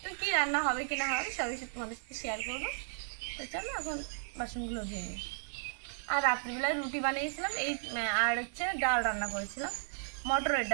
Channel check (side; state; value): left; silent; 55 dB below the other